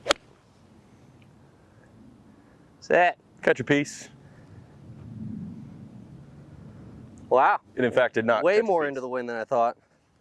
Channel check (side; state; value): both; identical; correlation 1.00